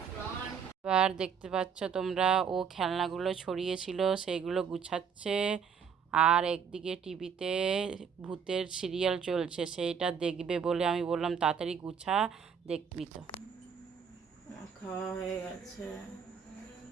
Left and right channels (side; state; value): left; quieter; 6.9 dB